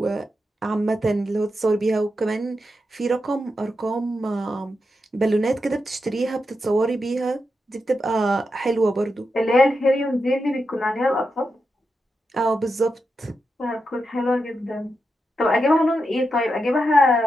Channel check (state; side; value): normal; both; correlation 0.87